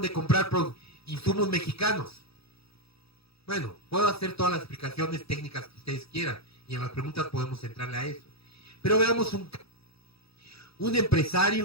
de comprar insumos mexicanos? Bueno, puedo hacer todas las explicaciones técnicas que ustedes quieran, y en las preguntas podemos entrarle a eso. Pero veamos un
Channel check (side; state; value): right; late; 0.77 ms